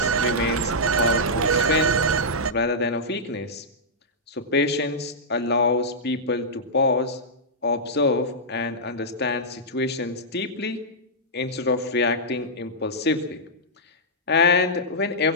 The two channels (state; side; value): normal; both; correlation -0.11